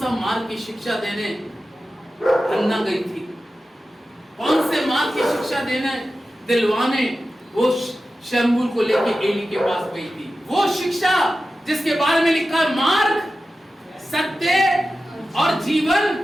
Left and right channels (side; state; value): both; normal; correlation 0.93